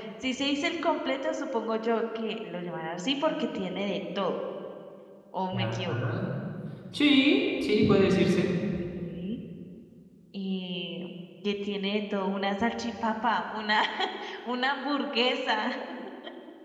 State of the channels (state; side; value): identical; both; correlation 1.00